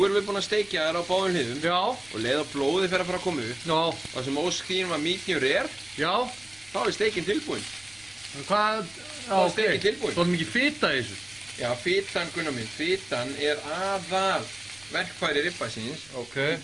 erum við búin að steikja þær á báðum hliðum. Já. Og leið að blóðið fer að fara að koma upp. Já. Það sem óskýrin var medium rare, Já. þá er steikin tilbúin. Hvað? Já, er steikinn tilbúin. Svo mikið fita í þessu. Já, fitan, Gunnar minn, fitan er aðal verkfæri ribbeysins. Ok.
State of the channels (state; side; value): noise; right; rumble, 28 dB below the sound